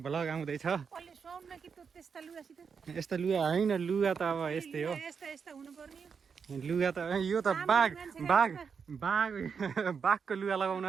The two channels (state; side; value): quieter; left; 6.1 dB